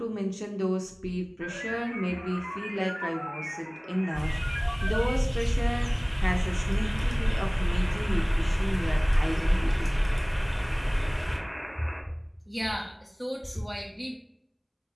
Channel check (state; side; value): identical; both; correlation 1.00